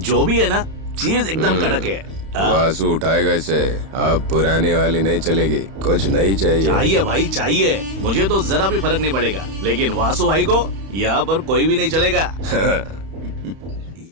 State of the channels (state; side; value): late; left; 31 ms